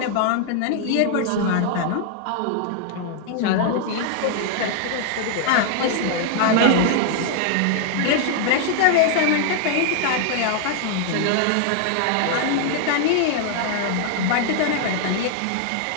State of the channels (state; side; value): different; both; correlation 0.00